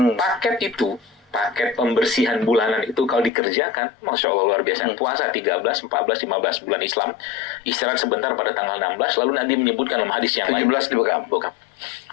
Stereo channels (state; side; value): drops out; right; at 3.3 s